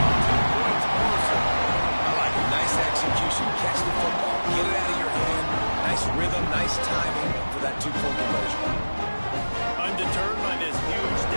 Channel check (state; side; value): inverted; both; correlation -1.00